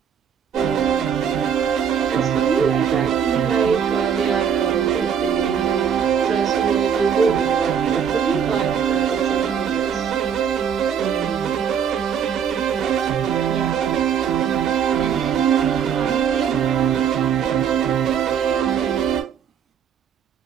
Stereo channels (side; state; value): left; quieter; 7.8 dB